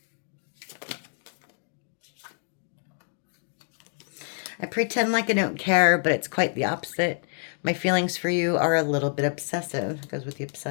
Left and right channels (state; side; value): silent; right; digital silence